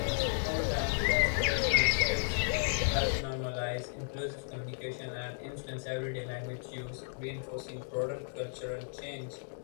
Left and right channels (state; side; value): silent; right; digital silence